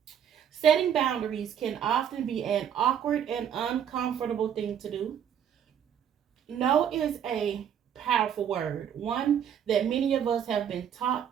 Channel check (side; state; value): left; quieter; 8.9 dB